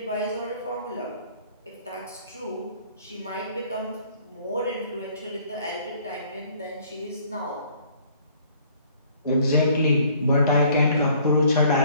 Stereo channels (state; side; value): inverted; both; correlation -0.58